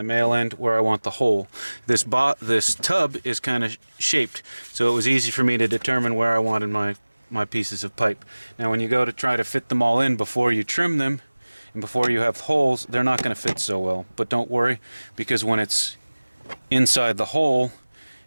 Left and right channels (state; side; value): inverted; both; correlation -1.00